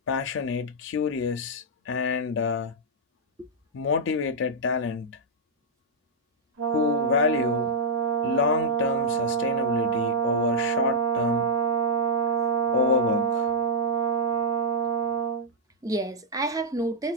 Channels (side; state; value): both; normal; correlation -0.08